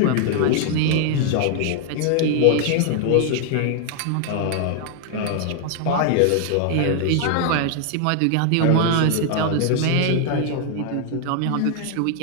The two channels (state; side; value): different; both; correlation 0.00